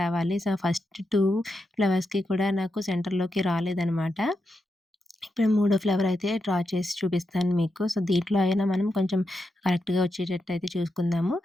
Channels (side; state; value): both; normal; correlation 0.86